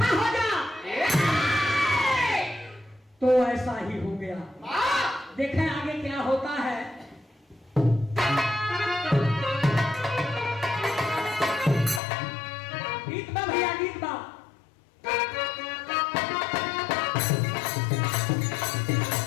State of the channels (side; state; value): right; drops out; at 12.0 s